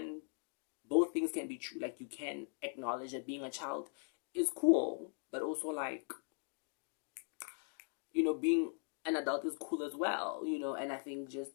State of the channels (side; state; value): right; silent; 51 dB below the other